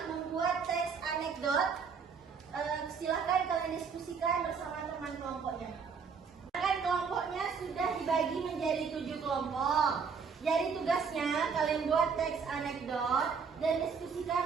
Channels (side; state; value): left; quieter; 5.9 dB